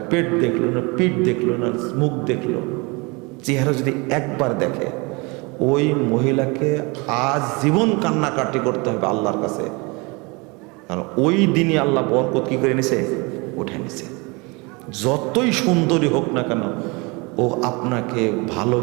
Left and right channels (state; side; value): quieter; left; 27.8 dB